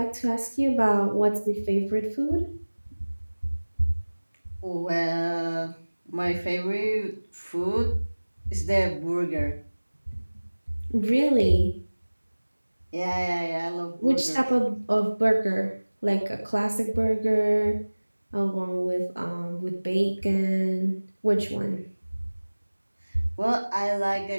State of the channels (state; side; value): inverted; both; correlation -1.00